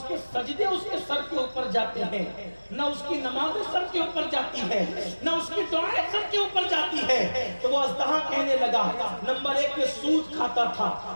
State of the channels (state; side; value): inverted; both; correlation -1.00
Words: کے سجدے اس کے سر کے اوپر جاتے ہیں، نہ اس کی نمازیں سر کے اوپر جاتی ہے، نہ اس کی دعائیں سر کے اوپر جاتی ہے، تو وہ اژدہا کہنے لگا نمبر 1 یہ سود کھاتا تھا،